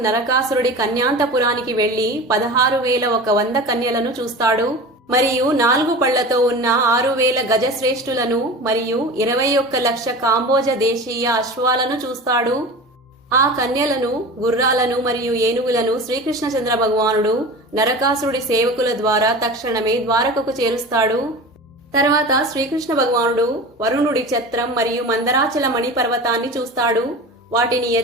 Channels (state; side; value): normal; both; correlation 0.33